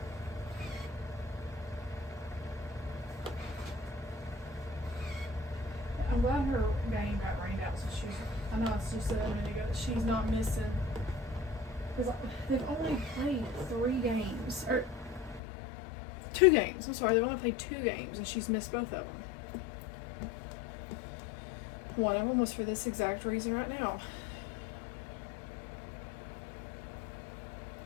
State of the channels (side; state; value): right; drops out; at 15.4 s